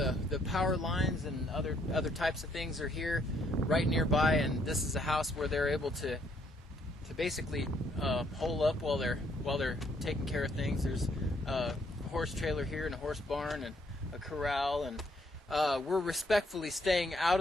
power lines and other types of things are here, right nearby. And this is a house where they're able to basically hole up while they're taking care of things. There's a horse trailer here and a horse barn and a corral, and we're respectfully staying out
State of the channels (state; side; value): normal; both; correlation 0.69